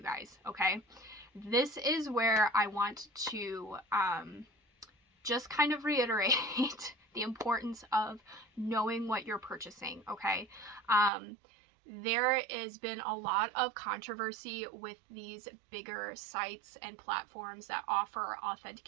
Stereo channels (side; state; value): left; drops out; at 11.1 s